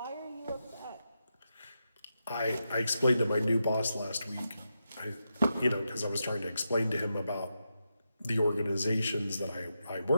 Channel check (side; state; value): both; inverted; correlation -0.87